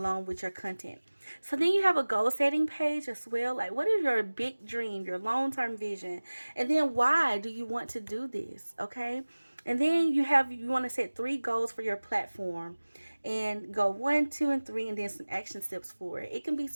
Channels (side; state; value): both; inverted; correlation -1.00